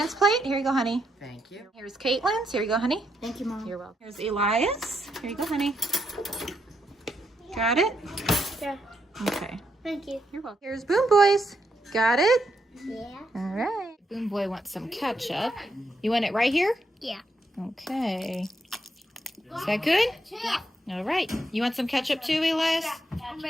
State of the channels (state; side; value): normal; both; correlation 0.79